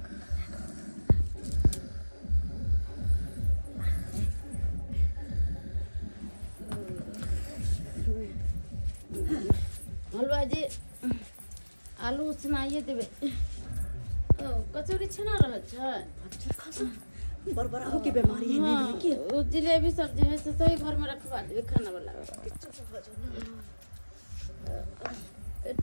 हलवा जी आलू सुनाइए देवे। कचौड़ी छना रह छै। बरबरा हो के बीमारी है नहीं की? जिलेबी सब्जी है से सही घर में रखवा देवे खाना वाला।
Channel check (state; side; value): inverted; both; correlation -1.00